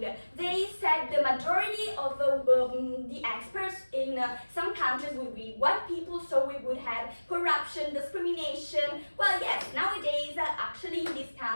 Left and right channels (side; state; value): both; inverted; correlation -1.00